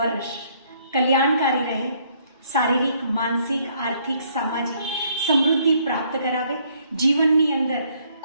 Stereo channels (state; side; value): inverted; both; correlation -0.66